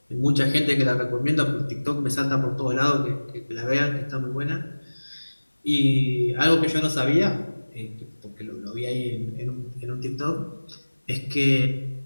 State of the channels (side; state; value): both; inverted; correlation -1.00